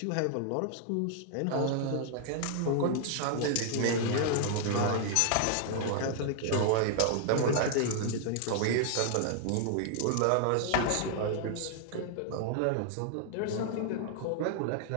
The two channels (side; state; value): both; different; correlation 0.00